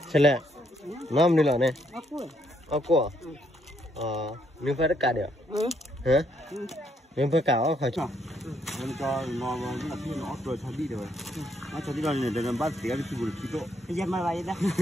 Chale, nam ni lah ne. Aku. Mình phải cắt được. Hả? Mình phải cắt không phải chứ? Mình cho nó là khi nó rồi cho đi rồi. Nó cho đi rồi này để làm bát xỉa đi chịu được đó. Bây giờ mà vậy đó.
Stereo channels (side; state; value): both; normal; correlation 0.72